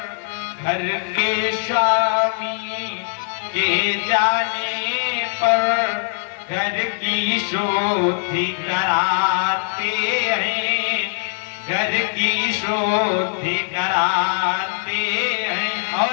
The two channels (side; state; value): right; silent; digital silence